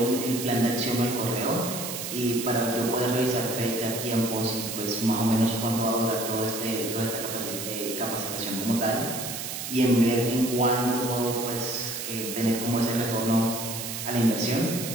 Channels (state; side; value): noise; right; hiss, 6 dB below the sound